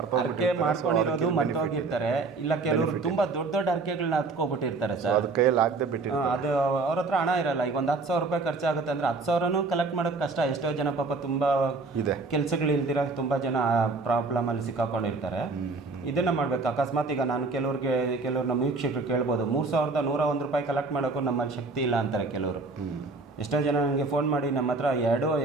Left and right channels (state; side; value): quieter; left; 3.7 dB